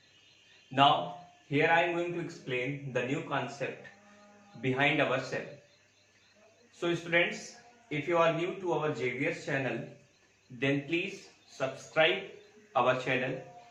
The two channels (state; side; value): identical; both; correlation 1.00